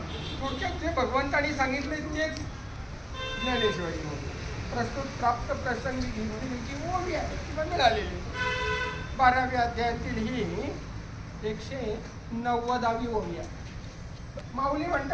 थोडक्यात जे भगवंतांनी सांगितले तेच ज्ञानेश्वरीमध्ये प्रस्तुत प्राप्त प्रसंगी जी ओवी आहे किंवा मिळालेली 12व्या अध्यायातील ही 190वी ओवी आहे. माऊली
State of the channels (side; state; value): both; identical; correlation 1.00